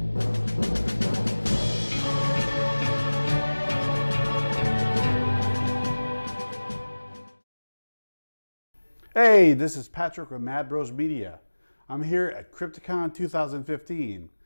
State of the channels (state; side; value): inverted; both; correlation -1.00